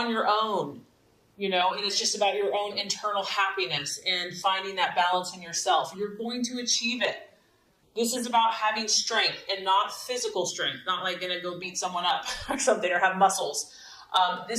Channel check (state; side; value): identical; both; correlation 1.00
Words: your own, and it's just about your own internal happiness and finding that balance in yourself, you're going to achieve it. This is about having strength and not physical strength, not like going to go beat someone up or something or have muscles.